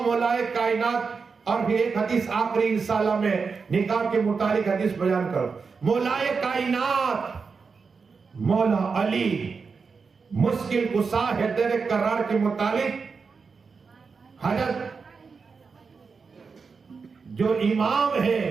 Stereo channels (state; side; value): quieter; left; 5.1 dB